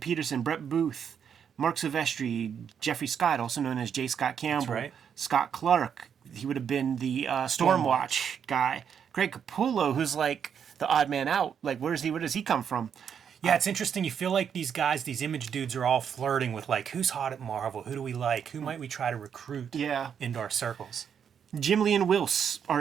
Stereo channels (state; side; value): quieter; left; 7.8 dB